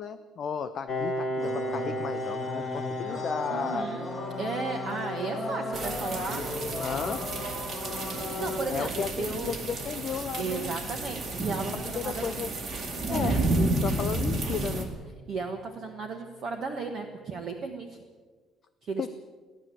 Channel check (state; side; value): normal; both; correlation 0.66